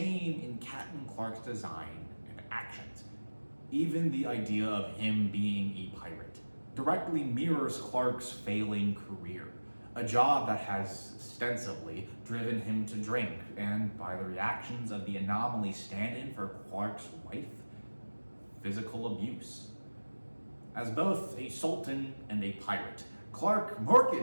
in Captain Clark's design and actions. Even the idea of him being a pirate directly mirrors Clark's failing career, a job that has ostensibly driven him to drink, and by the reactions of the anomaly stand-in for Clark's wife, physical abuse. As both a sultan and a pirate, Clark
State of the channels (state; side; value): inverted; both; correlation -1.00